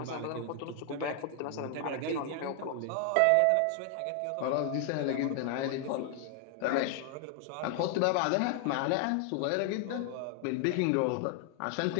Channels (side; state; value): both; different; correlation 0.00